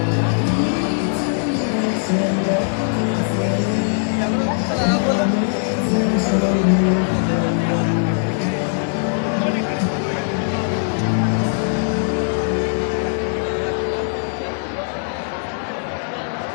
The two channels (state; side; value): silent; right; digital silence